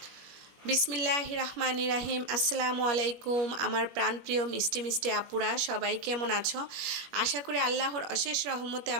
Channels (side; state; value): left; late; 21 ms